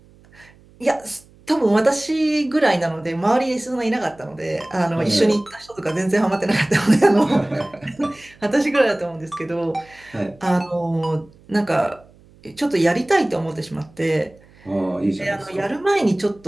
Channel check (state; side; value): noise; right; hum, 27 dB below the sound